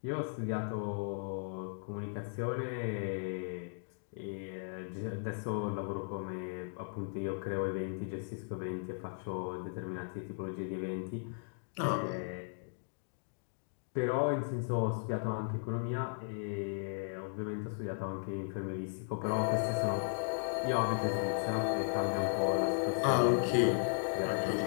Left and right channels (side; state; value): right; silent; digital silence